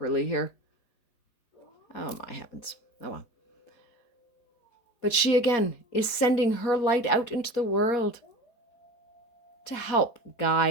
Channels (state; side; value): late; right; 4.2 ms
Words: here. Oh my heavens. Oh well. But she again is sending her light out into the world to help